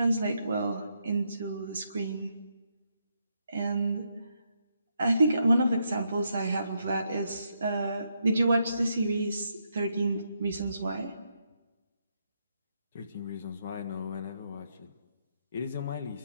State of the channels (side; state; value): both; inverted; correlation -0.79